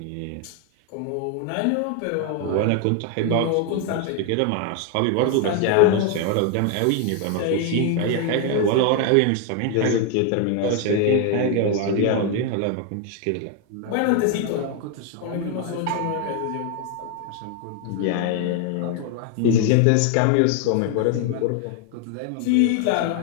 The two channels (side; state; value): both; different; correlation 0.01